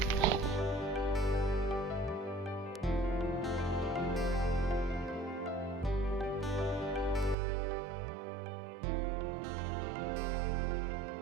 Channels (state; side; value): drops out; left; at 7.4 s